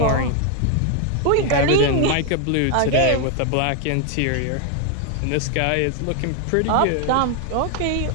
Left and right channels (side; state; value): both; different; correlation 0.01